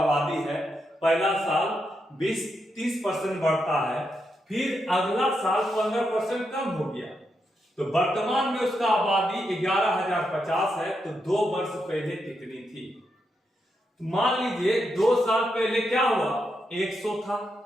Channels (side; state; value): both; normal; correlation 0.83